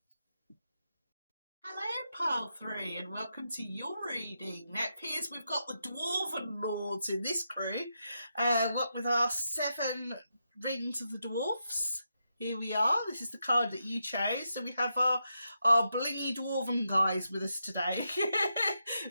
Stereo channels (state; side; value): inverted; both; correlation -0.84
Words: Hello, Pile 3, and welcome to your reading. Now, it appears we've got the Dwarven Lords in this crew. What with our 7 Rings of the Dwarfs. Here we are. This is the card that you chose. So we have our blingy Dwarven guys with us today.